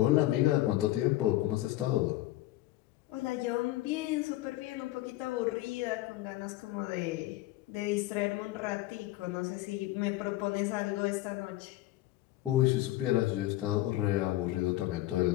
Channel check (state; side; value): quieter; right; 16.5 dB